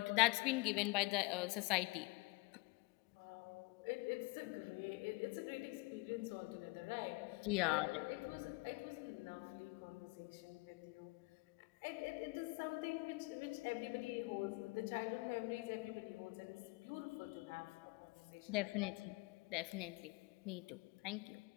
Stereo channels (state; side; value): quieter; right; 25.2 dB